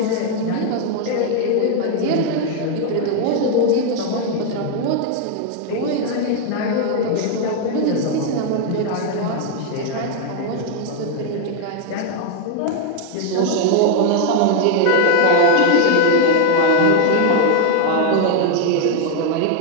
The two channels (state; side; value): different; both; correlation 0.00